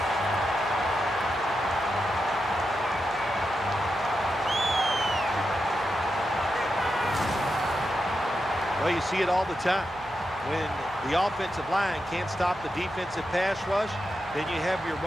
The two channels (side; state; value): right; noise; hum, 21 dB below the sound